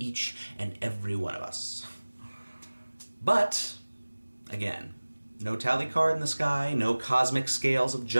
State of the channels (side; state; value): both; inverted; correlation -1.00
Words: and every one of us. But, again, no tally card in the sky, no cosmic scales of